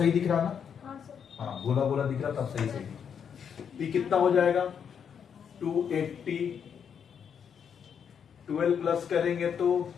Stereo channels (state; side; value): quieter; right; 7.5 dB